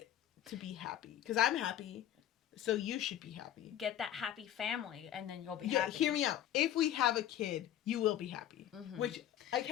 to be happy. Because I'm happy, so you should be happy. Get that happy family, and then you'll be happy. Hear me out. If we have a kid, you will be happy. Mm-hmm. Which, I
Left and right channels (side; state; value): right; quieter; 11.5 dB